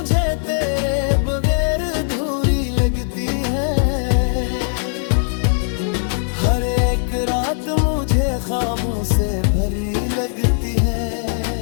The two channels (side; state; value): right; silent; digital silence